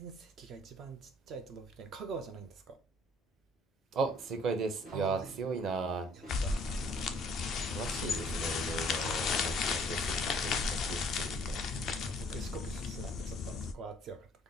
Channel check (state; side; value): normal; both; correlation 0.58